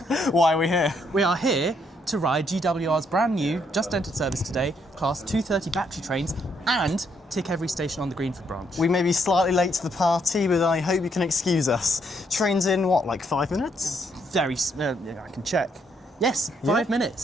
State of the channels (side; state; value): both; normal; correlation 0.73